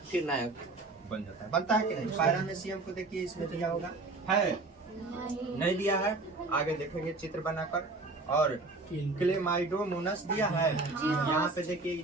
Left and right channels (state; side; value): quieter; left; 3.4 dB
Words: फिर नया बन जाता है। बनता है कि नहीं? पैरामीशियम को देखिए, इसमें दिया होगा, है नहीं दिया है? आगे देखेंगे चित्र बनाकर। और क्लेमाइडोमोनास दिया है, यहाँ पे देखिए